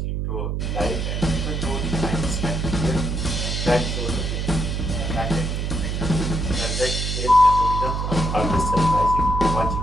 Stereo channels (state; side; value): noise; right; hum, 1 dB below the sound